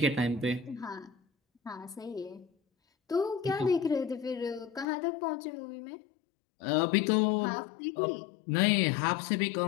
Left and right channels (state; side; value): drops out; right; at 4.9 s